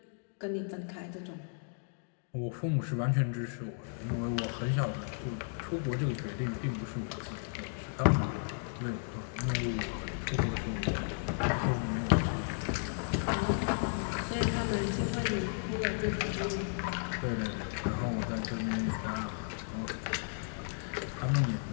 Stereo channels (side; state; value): right; silent; digital silence